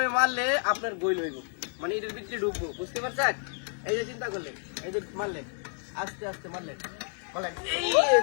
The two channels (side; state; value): right; silent; 58 dB below the other